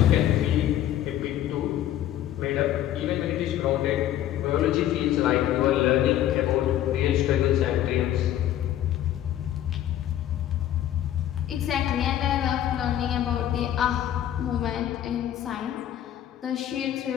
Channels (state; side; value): quieter; right; 11.9 dB